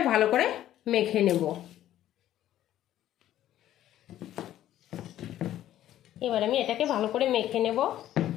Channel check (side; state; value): right; quieter; 12.7 dB